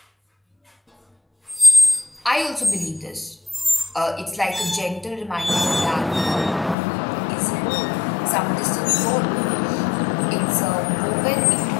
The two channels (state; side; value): drops out; right; at 6.8 s